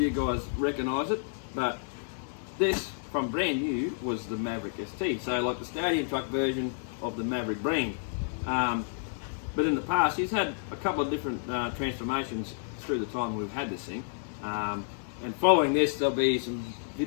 guys recognise it, but this from brand new was the Maverick ST, so like the stadium truck version of the Maverick brand. But in the past he's had a couple of different transformations through the time we've had this thing, and following this there'll be some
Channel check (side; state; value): right; silent; digital silence